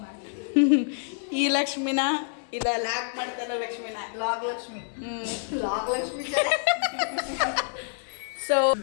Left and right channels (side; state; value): right; silent; digital silence